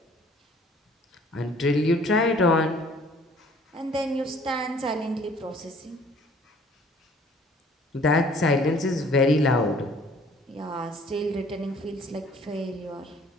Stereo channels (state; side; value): normal; both; correlation 0.55